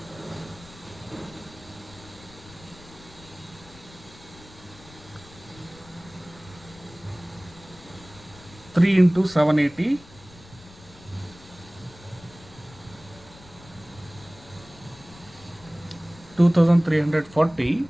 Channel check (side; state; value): left; noise; rumble, 21 dB below the sound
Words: 3 into 780 2340